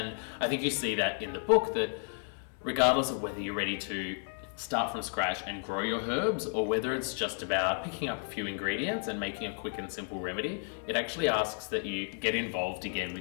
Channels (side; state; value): right; silent; 56 dB below the other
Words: I think you see that in the book, that regardless of whether you're ready to start from scratch and grow your herbs, or whether it's just about picking up a few ingredients and making a quick and simple remedy, it actually asks that you get involved again